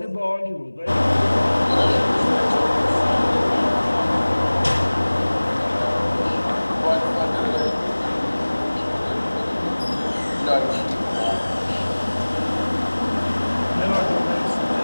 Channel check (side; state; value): both; inverted; correlation -1.00